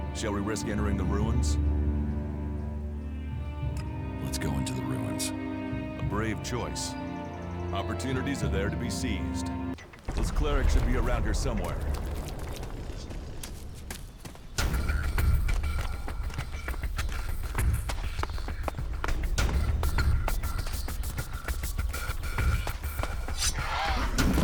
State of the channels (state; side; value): identical; both; correlation 1.00